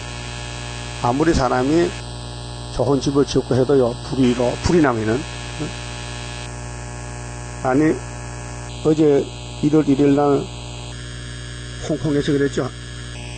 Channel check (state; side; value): identical; both; correlation 1.00